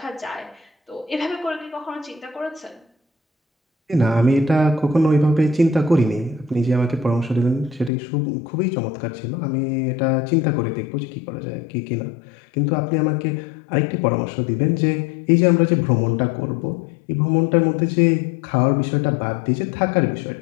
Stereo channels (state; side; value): drops out; right; at 7.9 s